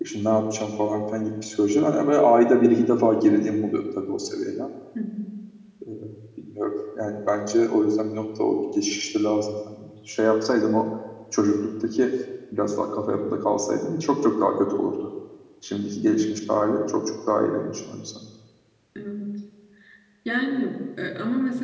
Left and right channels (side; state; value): both; identical; correlation 1.00